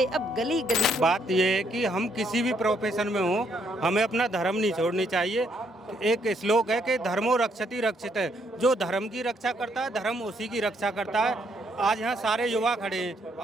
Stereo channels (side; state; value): both; normal; correlation 0.72